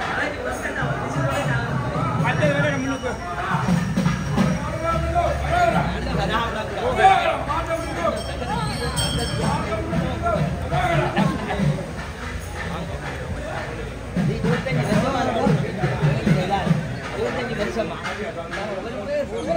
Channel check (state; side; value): identical; both; correlation 1.00